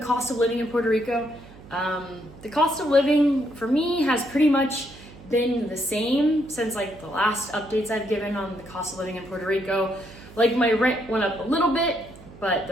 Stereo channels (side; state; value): right; noise; hum, 20 dB below the sound